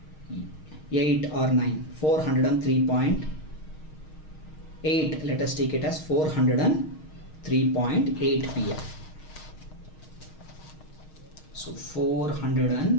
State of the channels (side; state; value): right; late; 6.4 ms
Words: or 9, 403.8, let us take it as 403.8 pf. So